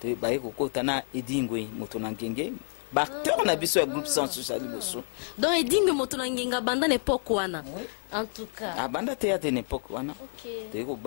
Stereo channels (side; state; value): right; silent; 59 dB below the other